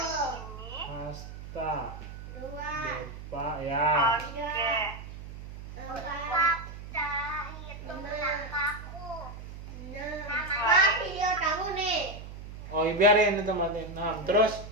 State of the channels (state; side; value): noise; right; hum, 12 dB below the sound